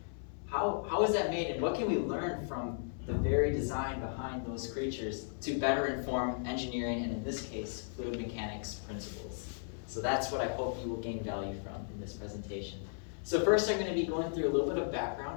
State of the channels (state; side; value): silent; right; 54 dB below the other